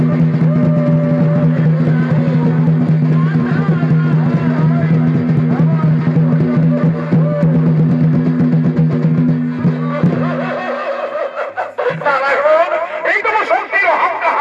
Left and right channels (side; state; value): both; identical; correlation 1.00